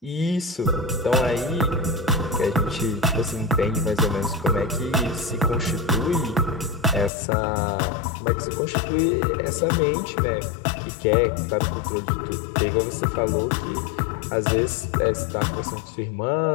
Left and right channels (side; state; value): right; drops out; at 7.1 s